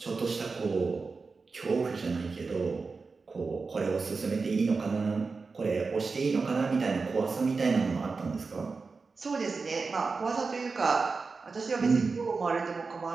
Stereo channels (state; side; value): quieter; left; 4.4 dB